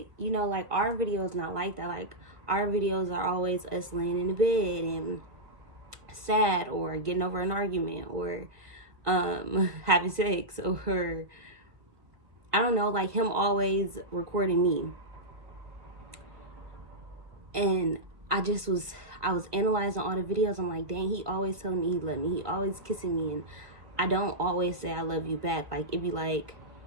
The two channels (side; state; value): left; late; 1.7 ms